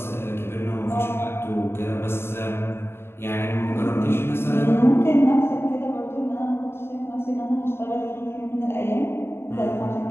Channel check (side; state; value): right; late; 0.11 ms